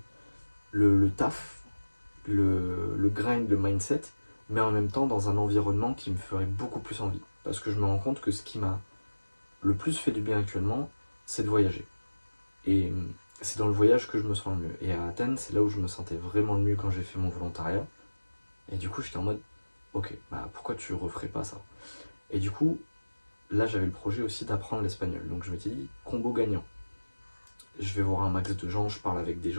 taf, le grind, le mindset, mais en même temps dans un environnement qui me ferait beaucoup plus envie. Parce que je me rends compte que ce qui m'a le plus fait du bien actuellement, c'est de voyager. Et c'est dans le voyage que je me sens le mieux. Et à Athènes, c'est là où je me sentais vraiment le mieux quand j'ai fait mon volontariat. Et du coup, j'étais en mode, ok, bah pourquoi tu referais pas ça? Et du coup, là, j'avais le projet aussi d'apprendre l'espagnol. Donc je m'étais dit, combo gagnant. Je vais voir un max de gens, je parle avec des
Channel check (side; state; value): both; inverted; correlation -1.00